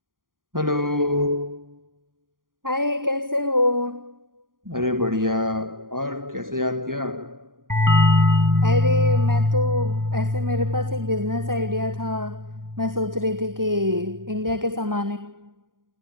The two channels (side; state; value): left; late; 0.91 ms